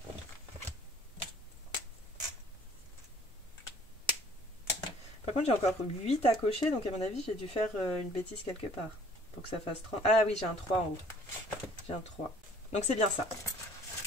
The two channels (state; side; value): normal; both; correlation 0.54